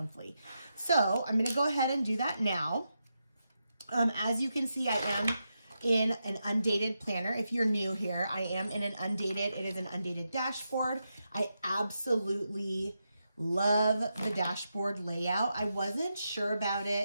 So I'm going to go ahead and do that now. As you can see, I am in an undated planner. If you're new here, I am in an undated, it is an undated dashboard. I absolutely love the dashboard layout. I wasn't sure about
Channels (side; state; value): both; inverted; correlation -0.86